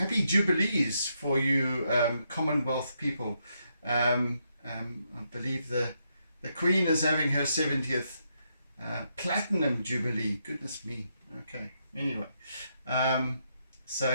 Jubilees for you Commonwealth people. I believe the Queen is having her 70th Platinum Jubilee. Goodness me. Okay, anyway, so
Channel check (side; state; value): both; inverted; correlation -0.79